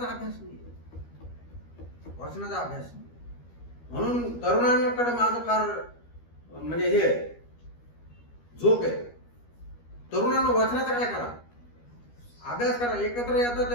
अभ्यास नाही, वाचनाचा अभ्यास नाही. म्हणून तरुणांकडे माझं फार म्हणजे हे जोक आहे. तरुणांना वाचनाचा काय करा, अभ्यास करा. एकत्र येतं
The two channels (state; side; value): late; right; 13 ms